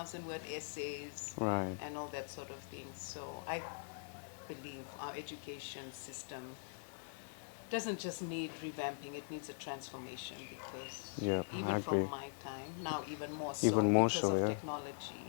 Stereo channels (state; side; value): silent; right; digital silence